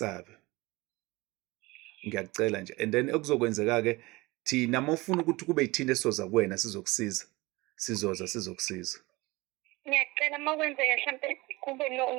Ngiyakucela nje. And then okuzokwenzeka-ke, thina mawufuna ukuthi kube yithina esizoza kuwena sizokusiza, sizokusiza. Ngiyacela uma kwenzeka mhlampe kube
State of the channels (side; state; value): left; quieter; 22.3 dB